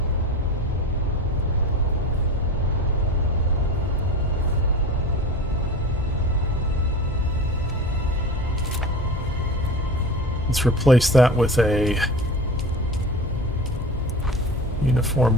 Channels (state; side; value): normal; both; correlation 0.31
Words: Let's replace that with a